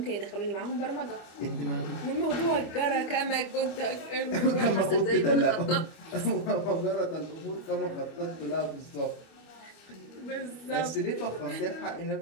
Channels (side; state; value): right; late; 25 ms